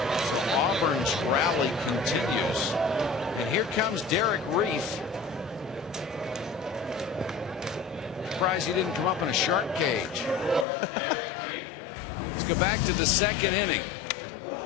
So Auburn's rally continues, and here comes Derek Reef. Surprised he didn't come up in a shark cage. Let's go back to the second inning.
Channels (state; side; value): drops out; right; at 10.7 s